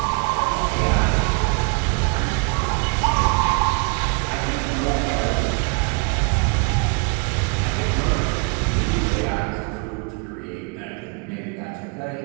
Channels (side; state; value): left; quieter; 34.7 dB